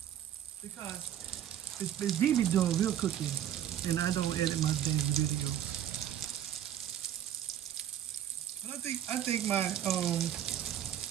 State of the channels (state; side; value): quieter; left; 10.6 dB